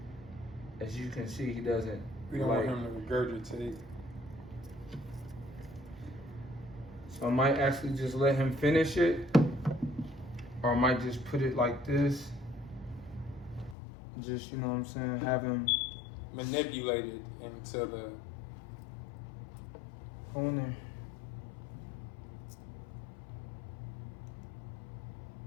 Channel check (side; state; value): right; drops out; at 13.8 s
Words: As you can see, he doesn't. We don't want him to regurgitate. So I might actually just let him finish it, or I might just put it like this. Just, you know what I'm saying, have him manipulated into the corner.